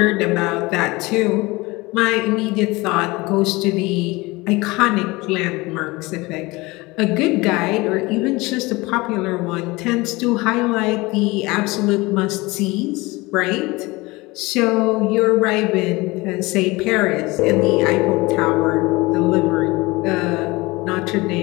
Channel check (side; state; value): right; quieter; 22.5 dB